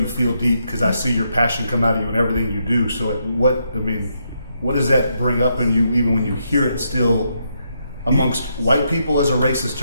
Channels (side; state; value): both; inverted; correlation -0.79